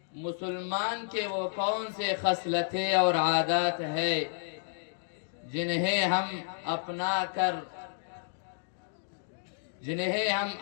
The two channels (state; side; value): silent; right; digital silence